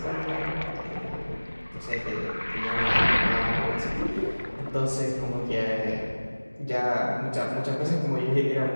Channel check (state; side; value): inverted; both; correlation -1.00